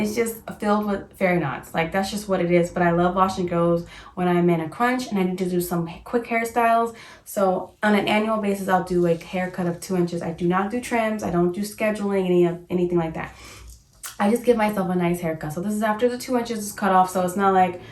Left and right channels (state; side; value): identical; both; correlation 1.00